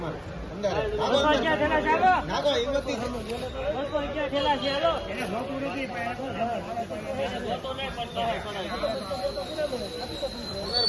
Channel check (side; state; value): both; identical; correlation 1.00